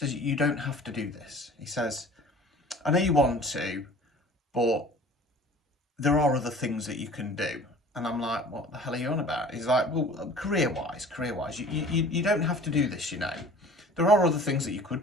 you don't have to do this. He says, I know you want to, but there are other things that you can do. And I'm like, what the hell are you on about? He's like, well, career-wise, you don't have to do this, you know. There are other things that you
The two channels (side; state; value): both; normal; correlation 0.46